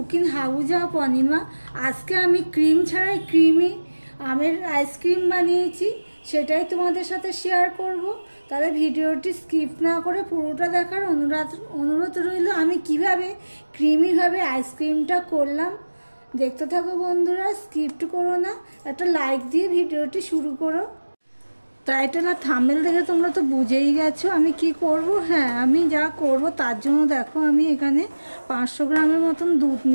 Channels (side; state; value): both; inverted; correlation -1.00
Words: हाउस ऑफ अनिमा। आज के आमी क्रीम छाड़ाई क्रीमी आमेर आइसक्रीम बानिয়েছি সেটাই তোমাদের সাথে শেয়ার করব। তাহলে ভিডিওটি স্কিপ না করে পুরোটা দেখার অনুরোধ রইল। আমি কিভাবে ক্রিমি ভাবে আইসক্রিমটা করলাম দেখতে থাকো বন্ধুরা, স্কিপ করো না, একটা লাইক দিয়ে ভিডিওটি শুরু করো। টাইটেল আর থাম্বনেল দেখে তোমরা তো বুঝেই গেছো আমি কি করব। হ্যাঁ, আমি যা করব তার জন্য দেখো আমি এখানে 500 গ্রামের মতন দুধ